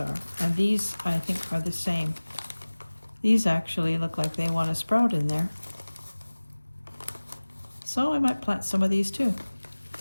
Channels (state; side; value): inverted; both; correlation -1.00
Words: And these, I think, are the same. These actually look like they want to sprout in there. So I might plant some of these too.